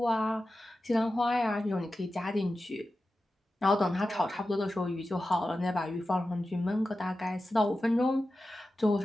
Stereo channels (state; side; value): normal; both; correlation 0.93